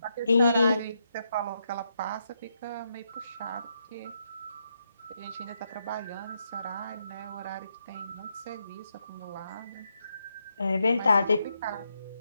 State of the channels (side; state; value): both; inverted; correlation -0.80